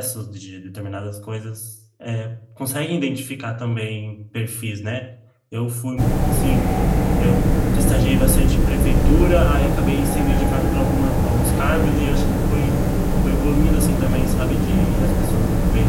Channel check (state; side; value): identical; both; correlation 1.00